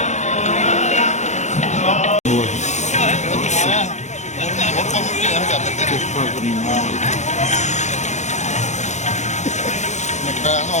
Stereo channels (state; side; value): late; right; 0.34 ms